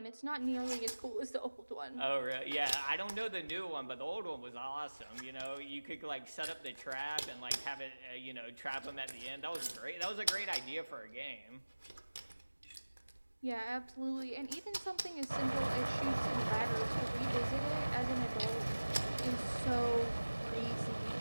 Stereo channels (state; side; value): inverted; both; correlation -1.00